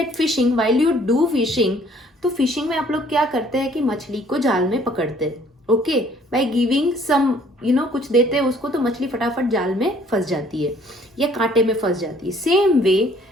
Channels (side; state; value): both; normal; correlation 0.59